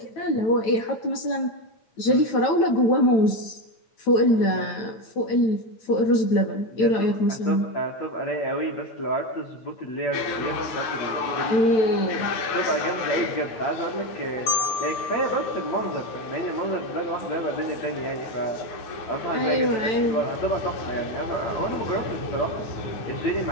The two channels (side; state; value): right; late; 9.4 ms